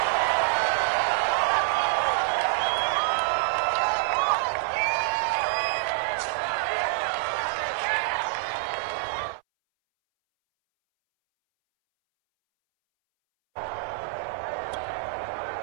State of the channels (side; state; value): left; silent; 61 dB below the other